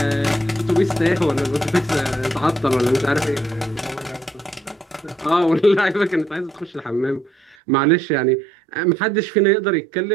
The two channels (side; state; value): left; drops out; at 7.6 s